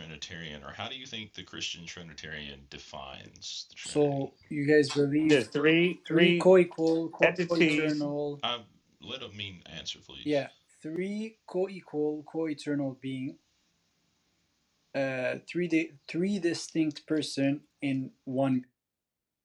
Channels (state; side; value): identical; both; correlation 1.00